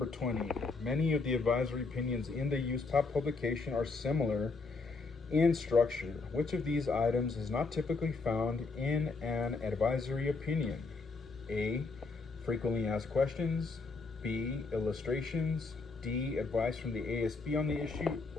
20, many of the advisory opinions in the USPAP publication are similar in structure. Which of these items is not typically found in an advisory opinion? A. Frequently asked questions, B. Illustrations, D. Advice from the ASB on the issue,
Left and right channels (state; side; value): quieter; right; 4.0 dB